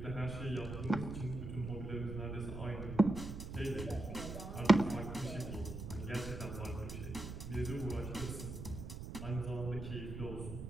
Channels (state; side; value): noise; right; rumble, 8 dB below the sound